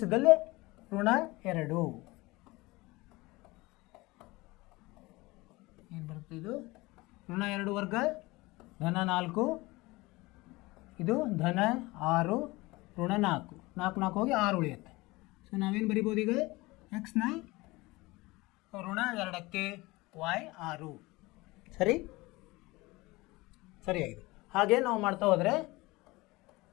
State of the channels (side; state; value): right; quieter; 21.8 dB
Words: ಇದ್ದಲ್ಲಿ ಋಣ 2 ಏನು ಬರುತ್ತೆ? ಇದು ಋಣ 2 ವರ್ಗ ಧನ 4, ಇದು ಧನ 6 ಋಣ 4 4 ಹೋಗಿ 6 ಉಳಿಯುತ್ತೆ. ಸೊ ನಾವೇನು ಬರಿಬೋದು ಈಗ? ಎಕ್ಸ್ನ ಋಣ 2ಕ್ಕೆ ವಾಯ್ 6. ಸರಿಯಾಗಿದೆ. ಹಾಗೆ ನಾವು ಮಾಡ್ತಾ ಹೋದರೆ